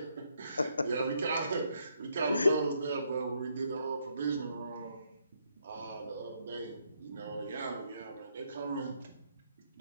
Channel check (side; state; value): both; inverted; correlation -0.74